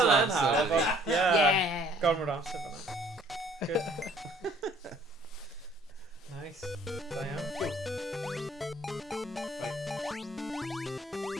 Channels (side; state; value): both; normal; correlation 0.58